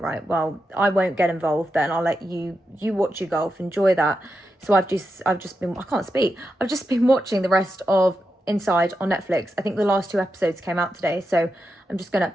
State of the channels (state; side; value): normal; both; correlation 0.87